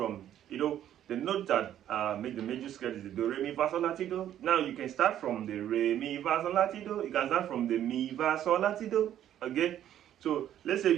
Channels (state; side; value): quieter; left; 11.1 dB